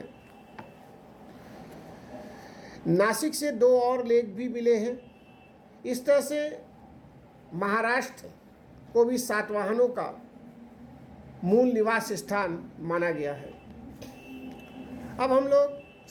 नासिक से 2 और लेख भी मिले हैं। इस तरह से महाराष्ट्र को भी सातवाहनों का मूल निवास स्थान माना गया है। अब हम लोग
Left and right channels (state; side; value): identical; both; correlation 1.00